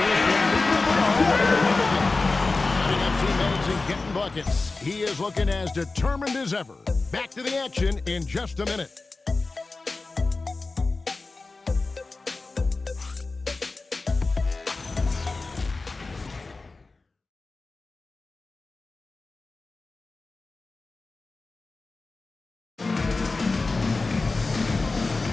been leading the ball. Setting up teammates and getting buckets. He is looking as determined as ever. Back to the action in just a minute.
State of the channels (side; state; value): right; quieter; 3.6 dB